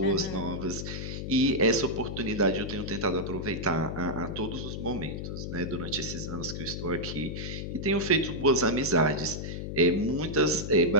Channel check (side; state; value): left; noise; hum, 6 dB below the sound